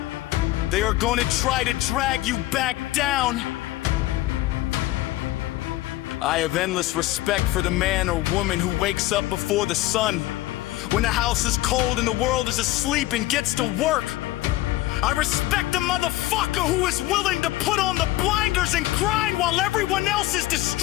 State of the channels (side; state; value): right; quieter; 17.1 dB